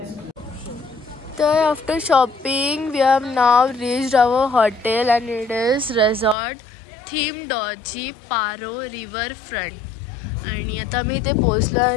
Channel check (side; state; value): right; drops out; at 6.4 s